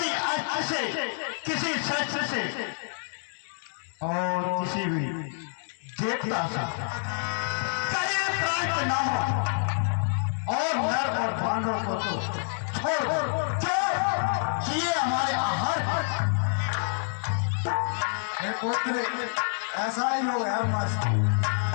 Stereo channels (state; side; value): silent; right; 60 dB below the other